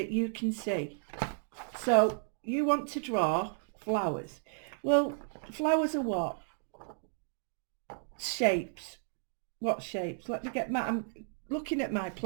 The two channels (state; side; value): silent; left; digital silence